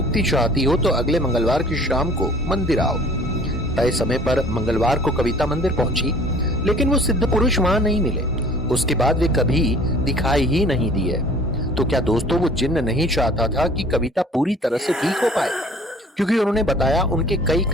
चाहती हो तो अगले मंगलवार की शाम को मंदिर आओ। तय समय पर मंगलवार को कविता मंदिर पहुंची, लेकिन वो सिद्ध पुरुष वहां नहीं मिले। उसके बाद वे कभी दिखाई ही नहीं दिए। तो क्या दोस्तों, वो जिन्न नहीं चाहता था कि कविता पूरी तरह से ठीक हो पाए? क्योंकि उन्होंने बताया, उनके कई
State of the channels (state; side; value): normal; both; correlation 0.50